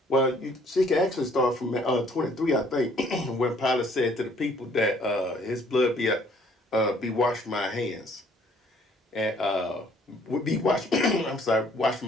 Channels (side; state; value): both; normal; correlation 0.61